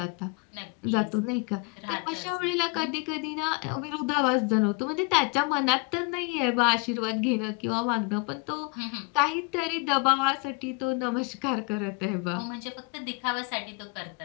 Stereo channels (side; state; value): right; quieter; 30.1 dB